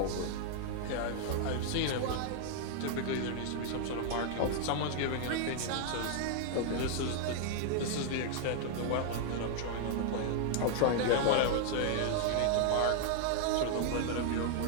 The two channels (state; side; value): different; both; correlation 0.00